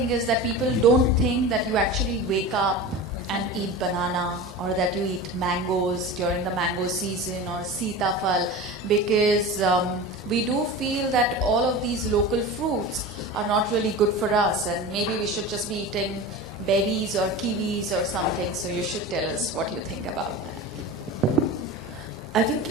is that people don't think that you actually wake up and eat banana, or that you eat mangoes during the mango season, or sitafal, because we do feel that all of these local fruits are not really good for us, and maybe we should just be eating berries or kiwis or something. So you should tell us what you think about that. I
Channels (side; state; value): both; normal; correlation 0.31